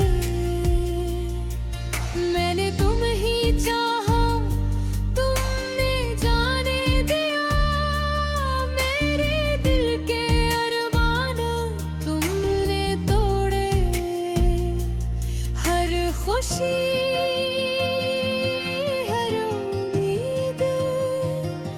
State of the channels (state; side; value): identical; both; correlation 1.00